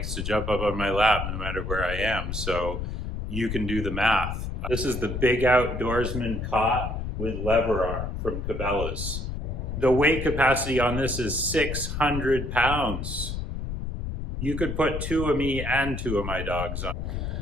to jump up on my lap no matter where I am, so you can do the math. This is the Big Outdoorsman Cot with lever arm from Cabelas. The weight capacity on this is 600 pounds. You could put two of me and two of my dogs on.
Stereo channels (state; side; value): noise; left; rumble, 4 dB below the sound